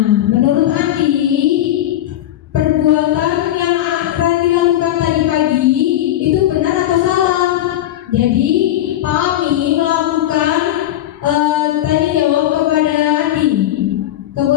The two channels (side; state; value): right; quieter; 13.0 dB